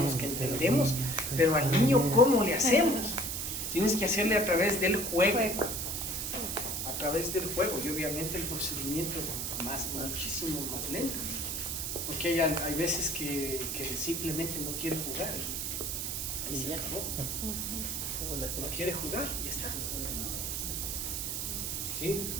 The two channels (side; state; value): right; noise; hiss, 2 dB below the sound